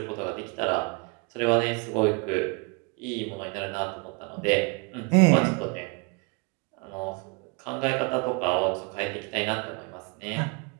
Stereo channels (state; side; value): quieter; left; 31.1 dB